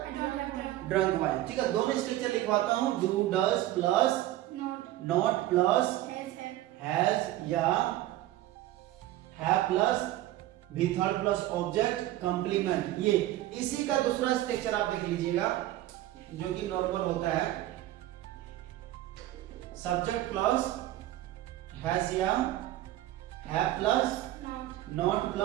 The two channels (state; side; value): quieter; left; 15.0 dB